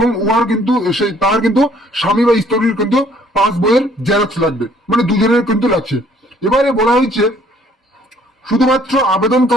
উহার কিন্তু তার কিন্তু স্বামী বা স্ত্রীর কিন্তু পাস বইয়ের জেরক্স লাগবে, মানে দুজনের কিন্তু লাগছে। এবারে বলা হয়েছে শুধুমাত্র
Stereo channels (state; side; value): normal; both; correlation 0.61